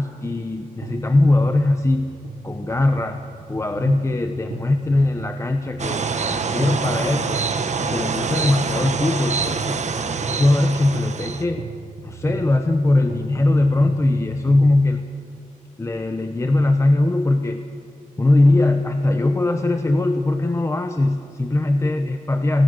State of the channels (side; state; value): both; normal; correlation 0.90